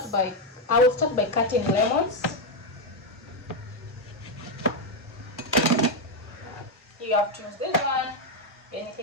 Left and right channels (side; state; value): both; normal; correlation 0.04